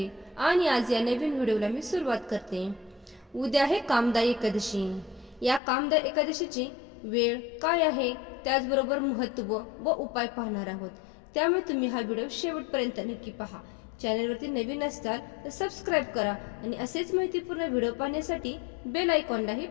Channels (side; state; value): right; drops out; at 5.6 s